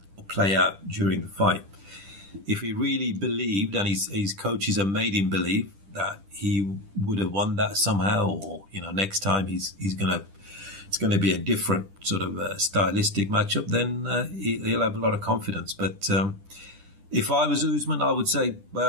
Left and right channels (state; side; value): late; left; 10 ms